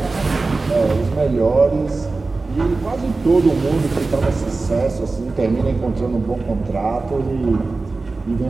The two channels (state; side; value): quieter; left; 3.7 dB